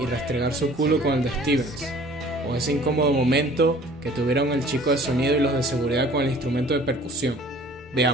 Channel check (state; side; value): normal; both; correlation 0.51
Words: restregar su culo con el de Stevens, o ese incómodo momento que tuvieron el chico de sonido y los de seguridad con el instrumento de percusión.